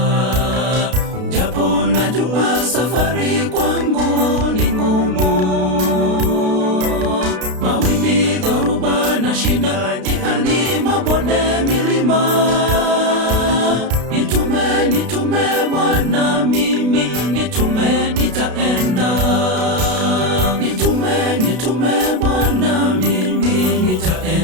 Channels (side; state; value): left; late; 32 ms